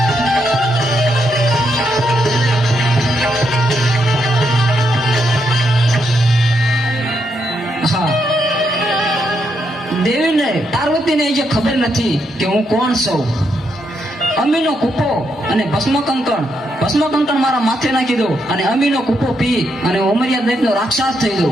દેવીને પાર્વતીને જે ખબર નથી કે હું કોણ છું. અમીનો કૂપો અને ભસ્મ કંકણ મારા માથે નાખી દો અને અમીનો કૂપો પી અને ઉમરિયા દૈતનો રાક્ષસ થઈ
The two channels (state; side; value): normal; both; correlation 0.79